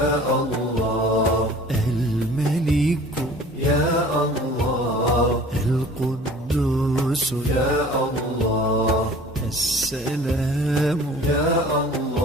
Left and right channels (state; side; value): normal; both; correlation 0.47